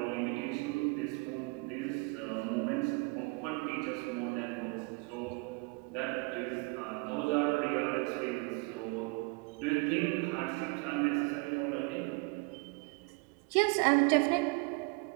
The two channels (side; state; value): left; quieter; 29.9 dB